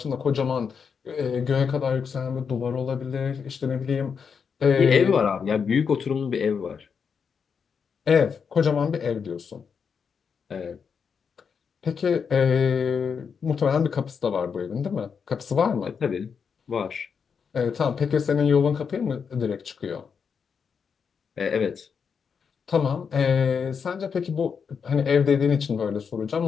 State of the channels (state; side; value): quieter; right; 6.3 dB